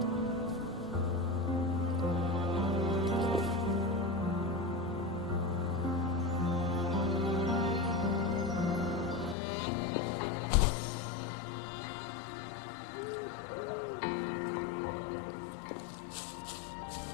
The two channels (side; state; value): right; drops out; at 9.3 s